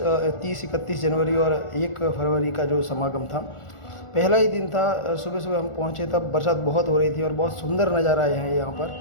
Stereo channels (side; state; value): right; late; 1.4 ms